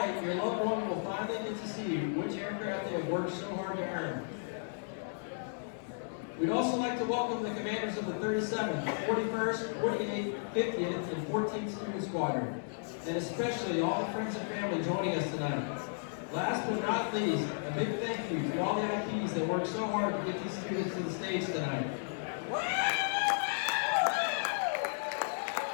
your loved one will finally get to see which aircraft they have worked so hard to earn. We'd also like to welcome the commanders of the 37th, 41st, 48th, 50th, and 14th Student Squadron, and especially all the friends and family joining us tonight. Last but not least, a big thank you to all the IPs that worked so hard to get these students to the stage tonight.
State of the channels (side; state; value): right; silent; 55 dB below the other